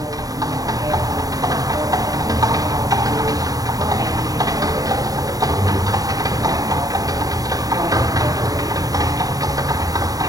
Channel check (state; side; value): late; left; 0.18 ms